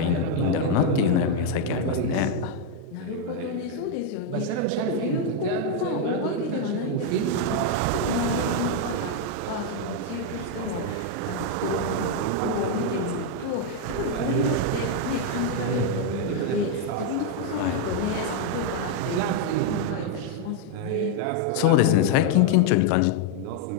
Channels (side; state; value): both; different; correlation 0.00